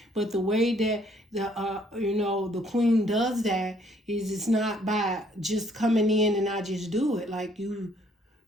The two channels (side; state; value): both; normal; correlation 0.64